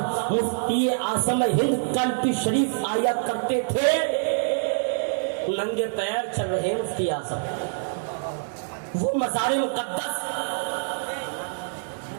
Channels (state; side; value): silent; left; 61 dB below the other